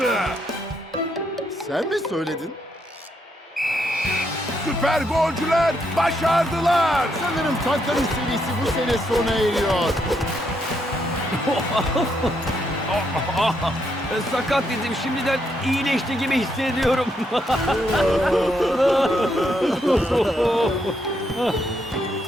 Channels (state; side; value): normal; both; correlation 0.77